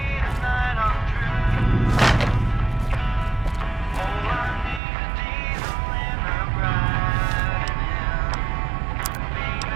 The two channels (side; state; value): left; drops out; at 4.8 s